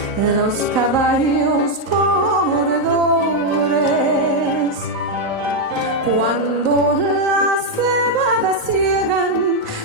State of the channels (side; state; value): right; late; 3.9 ms